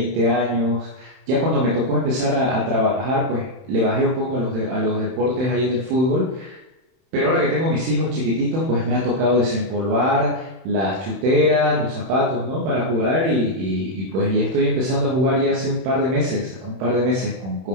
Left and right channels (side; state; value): left; late; 31 ms